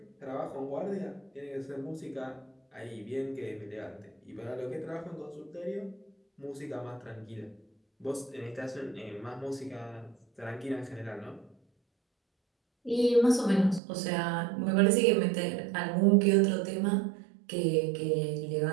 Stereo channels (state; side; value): drops out; left; at 13.8 s